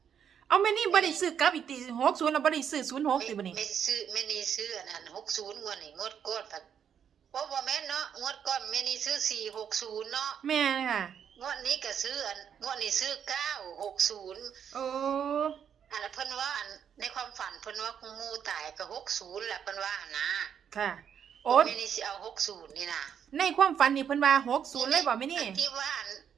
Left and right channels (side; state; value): left; quieter; 8.2 dB